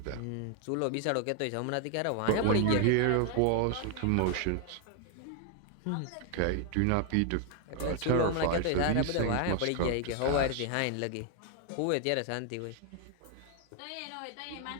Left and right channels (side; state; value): both; different; correlation 0.00